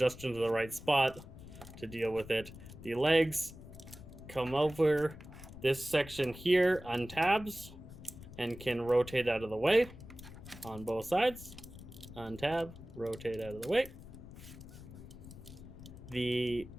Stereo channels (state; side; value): noise; left; rumble, 15 dB below the sound